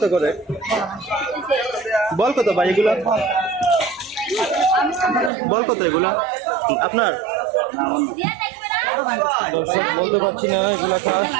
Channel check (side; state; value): left; drops out; at 5.3 s